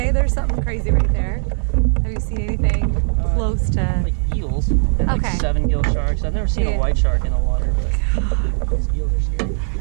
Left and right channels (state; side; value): silent; left; 67 dB below the other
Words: there's something crazy right there. Have you seen anything close to? Like eels. And like Okay. 7 gill sharks. I've never seen Yeah. a white shark in the water, but these eels are scary.